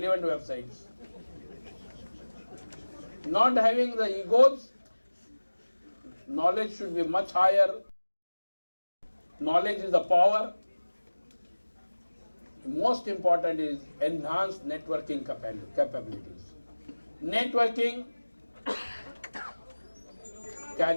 websites. Not having the egos, knowledge should be much higher. Knowledge is the power. Most important is enhanced networking capabilities. Networking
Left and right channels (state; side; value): inverted; both; correlation -1.00